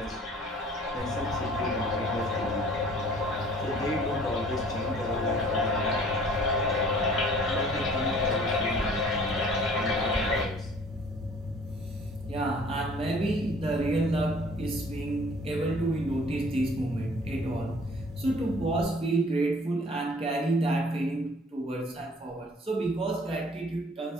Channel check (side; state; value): both; normal; correlation 0.53